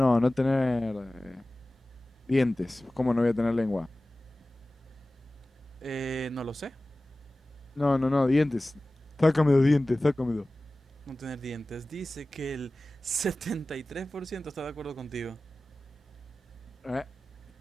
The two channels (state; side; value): normal; both; correlation 0.97